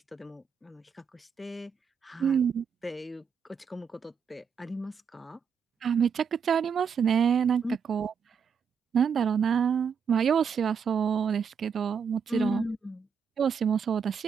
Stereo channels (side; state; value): left; quieter; 6.6 dB